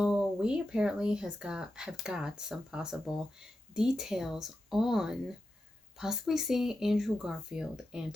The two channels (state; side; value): normal; both; correlation 0.90